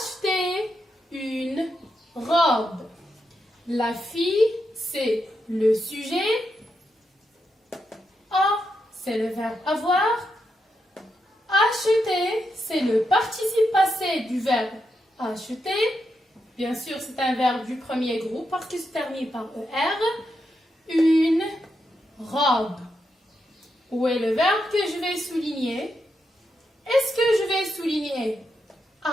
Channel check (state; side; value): normal; both; correlation 0.84